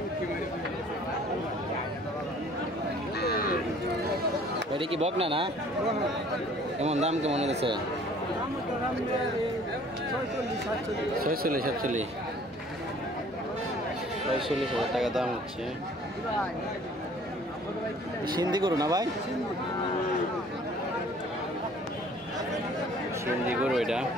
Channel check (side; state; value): both; normal; correlation 0.53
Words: এটা কি বকনা না? কেমন দাম কেমন হয়েছে? 46,000 টাকা দাম হচ্ছে। সিন্ধি গরু না ভাই? সিন্ধি গরু, এটা